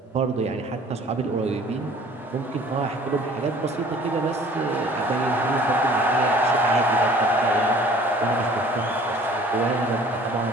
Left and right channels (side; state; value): both; normal; correlation 0.51